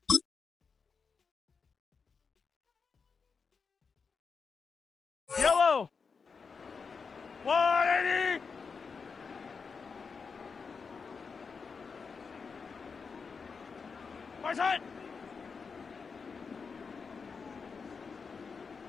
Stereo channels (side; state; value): right; quieter; 5.3 dB